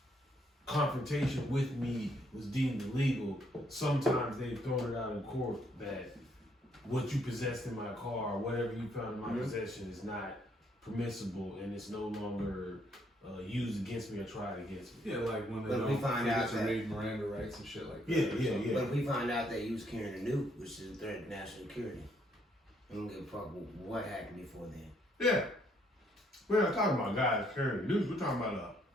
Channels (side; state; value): both; normal; correlation 0.70